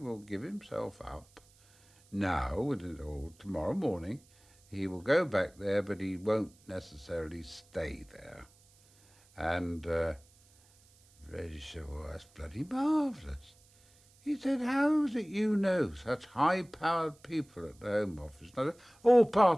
give himself up now or tomorrow morning, he will go back there, but he won't necessarily stay there. And Reggie said, well, that's bloody marvellous. He said, how is it you know such high-powered people at the Home Office? Now, all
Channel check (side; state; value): right; noise; hiss, 29 dB below the sound